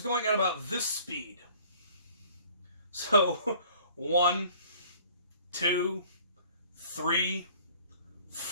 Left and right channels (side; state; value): both; inverted; correlation -0.52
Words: going at about this speed. So 1, 2, 3,